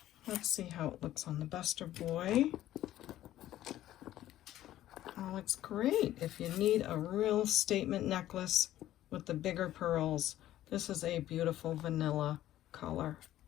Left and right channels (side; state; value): right; quieter; 13.5 dB